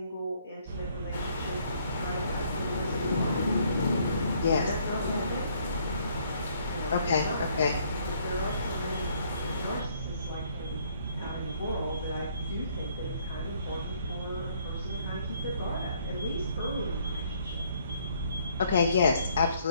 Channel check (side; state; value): both; inverted; correlation -0.65